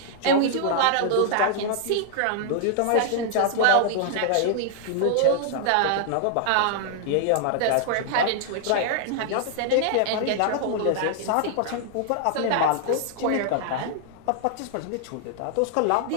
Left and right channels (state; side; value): different; both; correlation -0.01